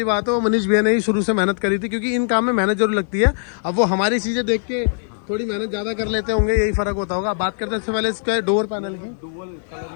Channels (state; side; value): silent; right; digital silence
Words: बात है वो मनीष भैया ने ही शुरू से मेहनत करी थी, क्योंकि इन काम में मेहनत जरूर लगती है। अब वो हमारी चीजें देख के थोड़ी मेहनत ज्यादा कर लेते होंगे, यही फर्क होता होगा। बात करते हैं इससे पहले इसका डोर पैनल की। डुअल कलर